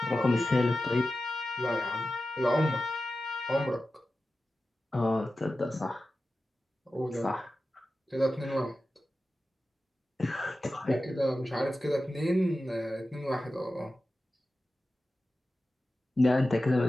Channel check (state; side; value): normal; both; correlation 0.94